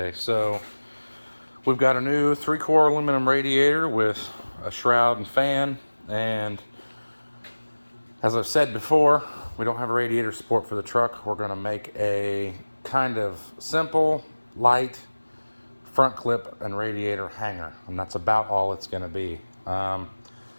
So we've got a new 3-core aluminum radiator with a shroud and fan, and as I've said before, we don't have a radiator support for the truck. We're going to make a kind of simple, light front clip and radiator hanger, and that's about all it's going to be.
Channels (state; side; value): inverted; both; correlation -1.00